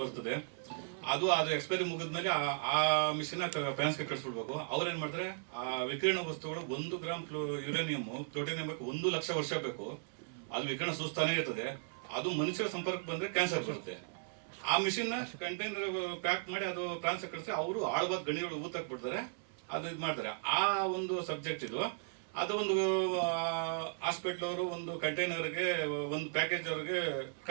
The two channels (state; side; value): silent; left; 54 dB below the other